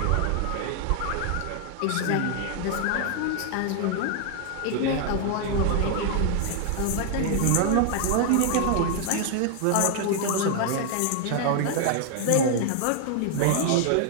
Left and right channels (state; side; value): different; both; correlation 0.00